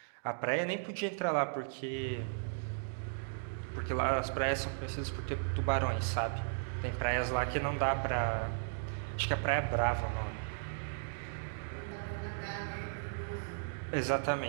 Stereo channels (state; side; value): silent; left; digital silence